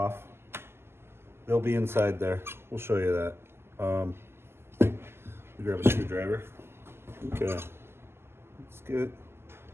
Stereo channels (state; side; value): late; left; 0.12 ms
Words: they'll be inside there. We'll show you that. Let me grab a screwdriver. Okay, let's get